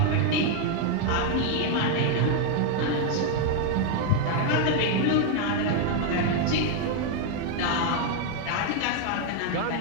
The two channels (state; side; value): different; both; correlation 0.00